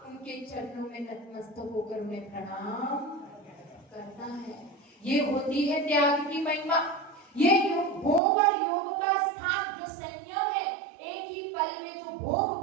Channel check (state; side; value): drops out; left; at 8.2 s